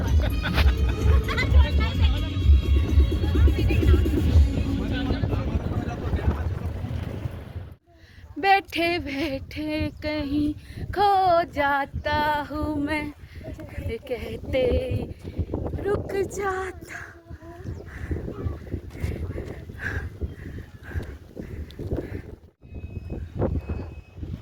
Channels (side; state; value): both; identical; correlation 1.00